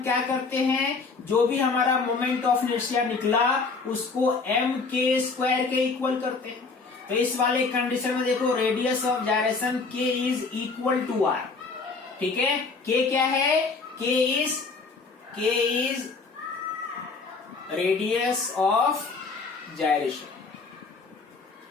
क्या करते हैं? जो भी हमारा मोमेंट ऑफ इनर्शिया निकला उसको m के स्क्वायर के इक्वल करते हैं। तो इस वाले कंडीशन में देखो, radius of gyration k is equal to r। ठीक है, k क्या है? k is radius of gyration.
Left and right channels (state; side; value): quieter; right; 4.3 dB